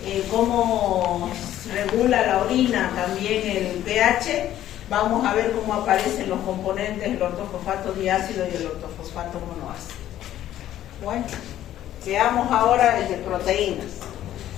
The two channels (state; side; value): quieter; right; 12.5 dB